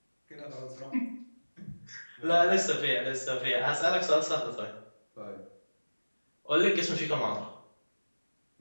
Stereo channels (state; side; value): inverted; both; correlation -1.00